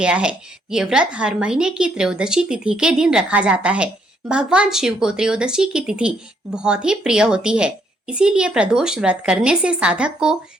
है। ये व्रत हर महीने की त्रयोदशी तिथि के दिन रखा जाता है। भगवान शिव को त्रयोदशी की तिथि बहुत ही प्रिय होती है, इसीलिए प्रदोष व्रत करने से साधक को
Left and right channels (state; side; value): normal; both; correlation 0.71